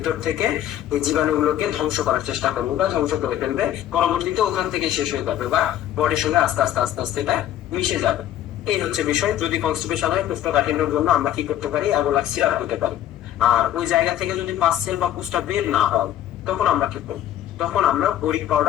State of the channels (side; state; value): right; quieter; 11.8 dB